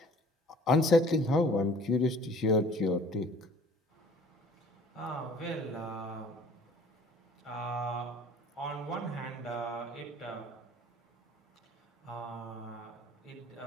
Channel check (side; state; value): both; normal; correlation 0.51